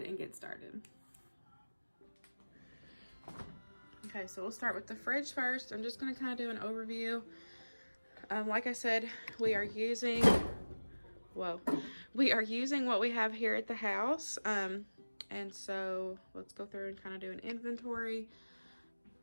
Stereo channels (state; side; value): inverted; both; correlation -1.00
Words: and get started. Okay, so we'll start with the fridge first. I'm just going to kind of do an overview. Like I said, we are using what we have here at the house. And so let's go through and kind of do an inventory.